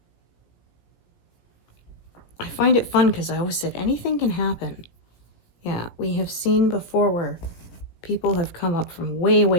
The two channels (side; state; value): right; late; 17 ms